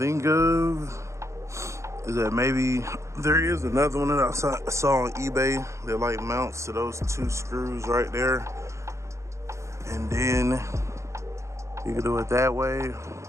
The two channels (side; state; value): left; late; 0.14 ms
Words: of is that maybe there is another one that I saw on eBay that like mounts to those two screws right there, and then you can do it that way.